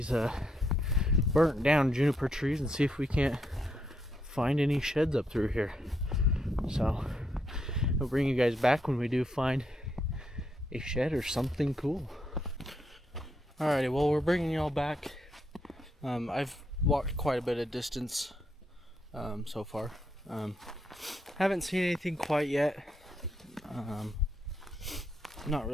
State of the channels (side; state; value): both; normal; correlation 0.78